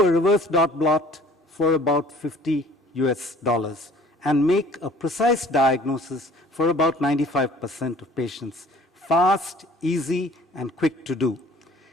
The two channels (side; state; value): both; normal; correlation 0.51